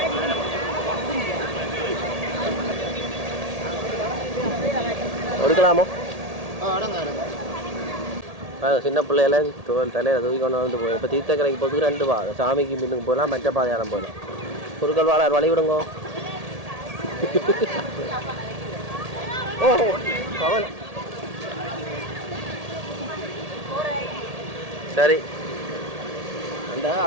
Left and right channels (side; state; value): left; late; 1.8 ms